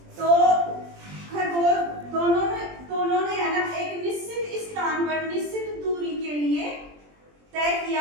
तो खरगोश दोनों ने है ना एक निश्चित स्थान पर निश्चित दूरी के लिए तय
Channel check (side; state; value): left; late; 20 ms